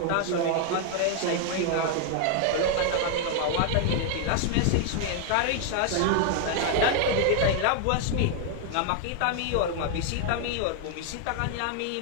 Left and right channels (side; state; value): both; different; correlation 0.00